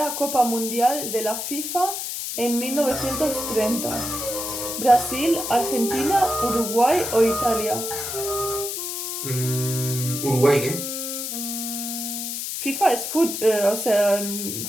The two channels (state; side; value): noise; left; hiss, 4 dB below the sound